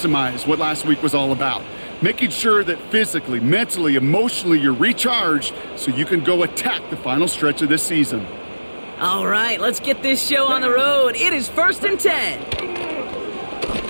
what last week was all about. Making sure that physically, mentally, emotionally, you're recharged so you can go attack the final stretch of this season. All right, let's get this show on the road. It is 1st and 10.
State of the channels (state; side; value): inverted; both; correlation -1.00